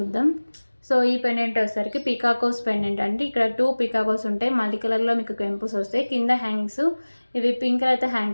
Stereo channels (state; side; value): inverted; both; correlation -1.00